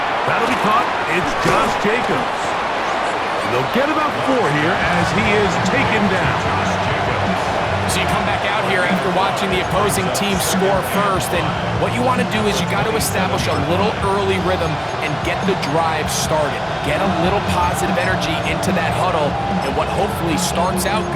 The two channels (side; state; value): both; identical; correlation 1.00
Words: That'll be caught. It's Josh Jacobs. And they'll get about 4 here as he is taken down. So you come back out here after watching the opposing team score first, and what you want to do is you got to establish a little early rhythm and get the drive started. Get a little positive energy into that huddle, and what hopefully starts out